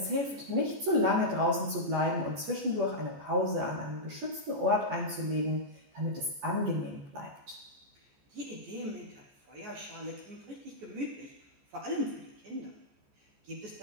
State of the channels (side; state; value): left; late; 14 ms